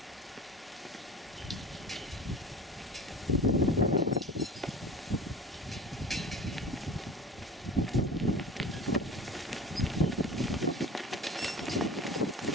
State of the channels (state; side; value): normal; both; correlation 0.38